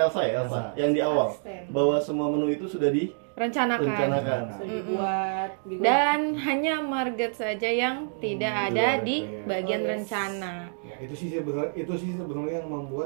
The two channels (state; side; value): silent; left; digital silence